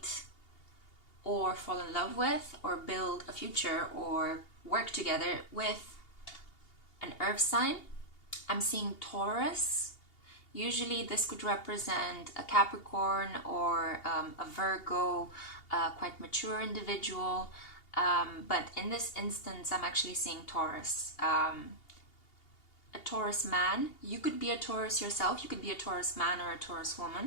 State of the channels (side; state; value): right; late; 2.8 ms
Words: or fall in love with or build a future or work together with an earth sign. I'm seeing Taurus. Usually this could represent a Capricorn or a Virgo, quite mature individual. But in this instance, I'm actually seeing Taurus. A Taurus man. You could be a Taurus yourself. You could be a Taurus man or a Taurus